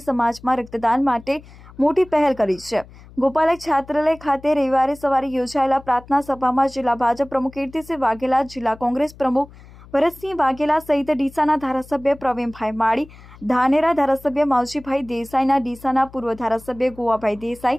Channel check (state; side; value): noise; left; hum, 21 dB below the sound